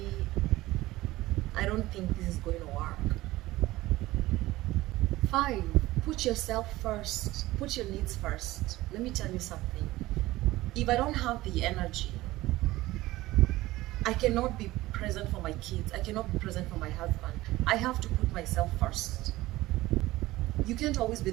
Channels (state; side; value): quieter; left; 17.8 dB